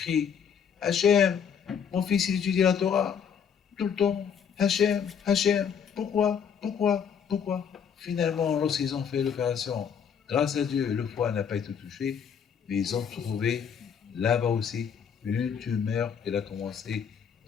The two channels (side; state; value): right; quieter; 7.4 dB